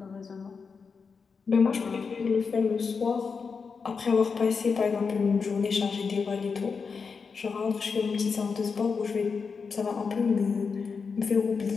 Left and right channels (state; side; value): quieter; right; 5.3 dB